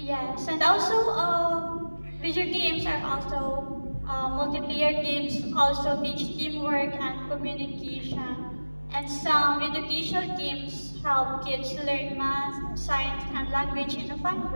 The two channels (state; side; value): inverted; both; correlation -1.00